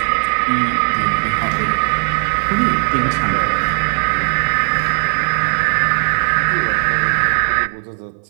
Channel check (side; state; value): left; silent; 60 dB below the other